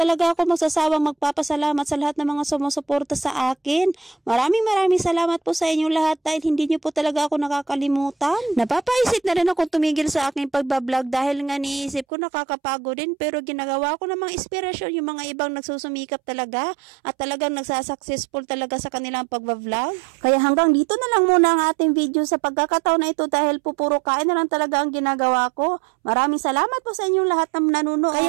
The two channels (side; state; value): left; drops out; at 12.1 s